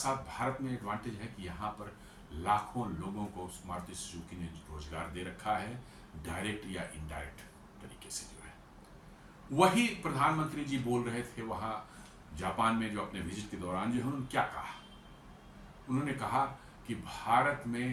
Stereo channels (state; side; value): identical; both; correlation 1.00